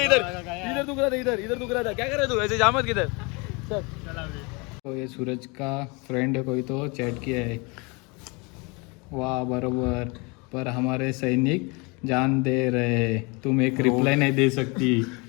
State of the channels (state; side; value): quieter; right; 28.9 dB